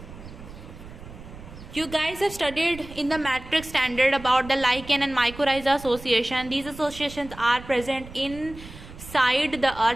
You guys have studied in the matrix standard about the lichen and mycorrhiza association. These associations are present inside the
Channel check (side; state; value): right; noise; rumble, 15 dB below the sound